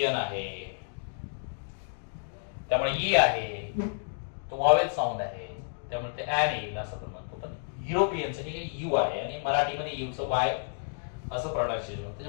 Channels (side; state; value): right; silent; digital silence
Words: आहे, त्यामुळे ई आहे, तो वॉवेल साऊंड आहे, त्यामुळे ते ऍन येईल असं आपण म्हणतो. पण युरोपियनचं हे यू आहे आणि मराठीमध्ये यूचं वाय असं प्रोनाउन्सिएशन होतं.